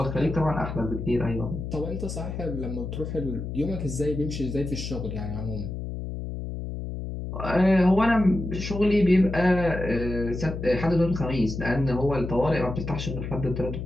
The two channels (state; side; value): noise; left; hum, 6 dB below the sound